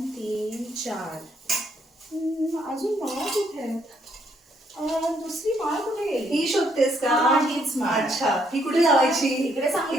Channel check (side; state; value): both; normal; correlation 0.71